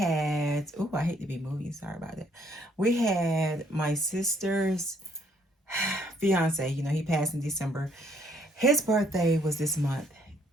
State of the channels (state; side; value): normal; both; correlation 0.67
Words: oh, I hate to be moving. Sorry about that. We had my sister's fiance. You know, he passed in December. His birthday was this month